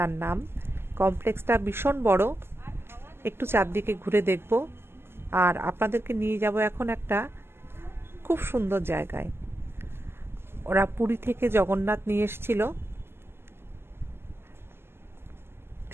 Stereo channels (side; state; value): left; late; 0.12 ms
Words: নাম। কমপ্লেক্সটা ভীষণ বড়, একটু চারদিকে ঘুরে দেখব আর আপনাদেরকে নিয়ে যাব এখন একটা খুব সুন্দর জায়গায়। ওরা পুরী থেকে জগন্নাথ নিয়ে এসেছিল,